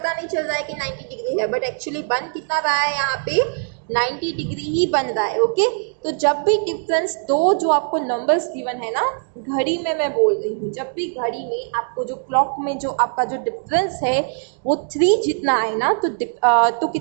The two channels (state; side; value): silent; left; 65 dB below the other